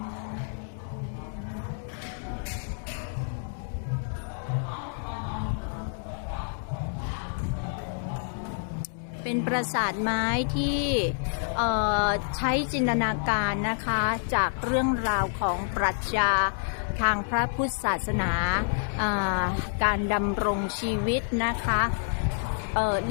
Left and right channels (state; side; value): silent; right; digital silence